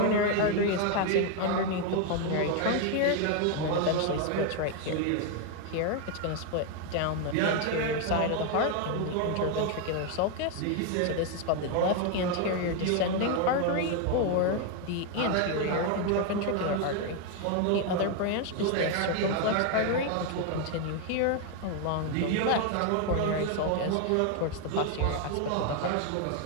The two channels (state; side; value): different; both; correlation 0.01